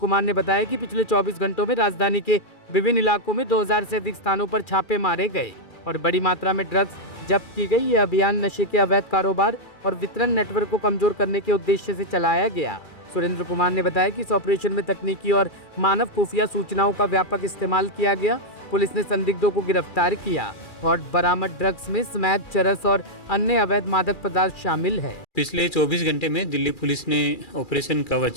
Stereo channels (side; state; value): right; late; 2.4 ms